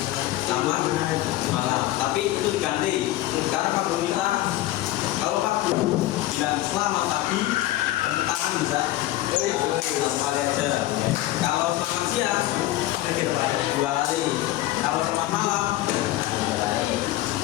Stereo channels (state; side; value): quieter; right; 15.8 dB